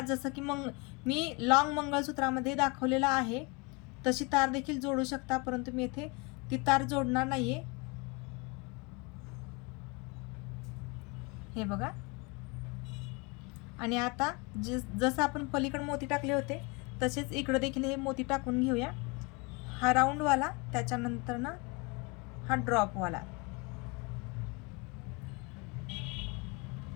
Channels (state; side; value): quieter; right; 28.0 dB